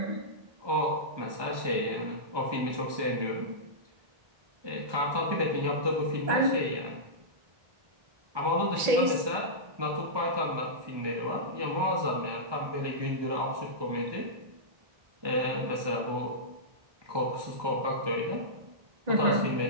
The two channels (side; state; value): left; late; 1.2 ms